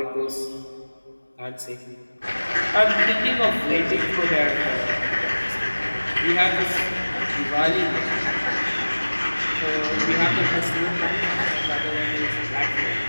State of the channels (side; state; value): both; inverted; correlation -1.00